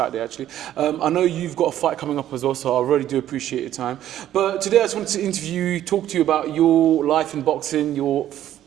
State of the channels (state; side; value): quieter; left; 12.1 dB